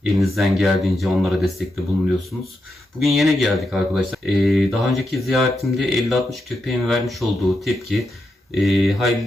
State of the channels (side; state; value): both; normal; correlation 0.85